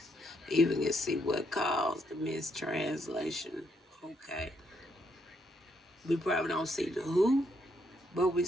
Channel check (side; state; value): both; normal; correlation 0.75